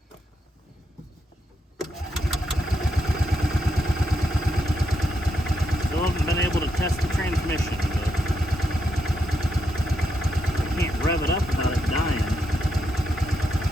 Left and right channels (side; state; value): both; normal; correlation 0.81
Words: Still haven't been able to test the transmission, but I can't rev it up without it dying.